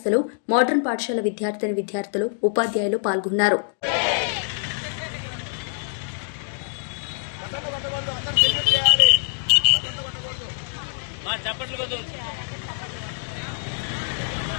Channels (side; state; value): right; silent; digital silence